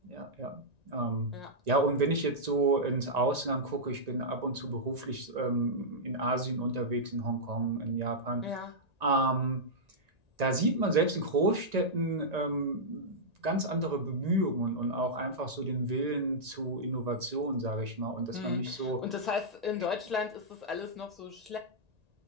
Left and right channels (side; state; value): left; late; 1.9 ms